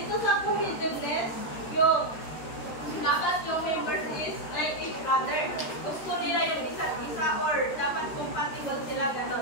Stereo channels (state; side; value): late; right; 13 ms